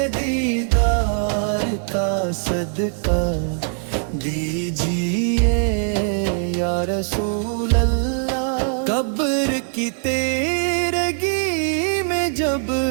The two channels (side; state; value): left; silent; 65 dB below the other